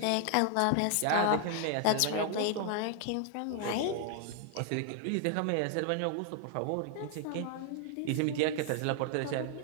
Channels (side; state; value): both; different; correlation 0.00